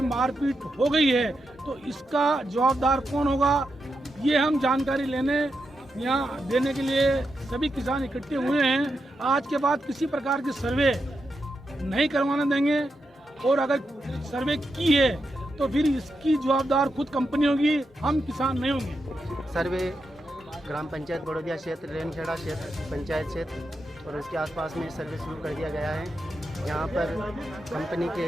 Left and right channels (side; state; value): both; normal; correlation 0.86